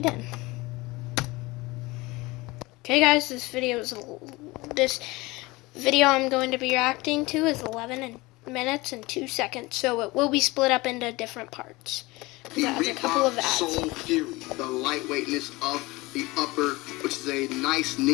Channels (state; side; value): quieter; right; 22.1 dB